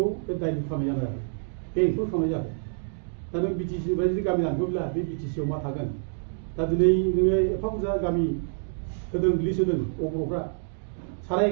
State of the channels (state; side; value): silent; left; digital silence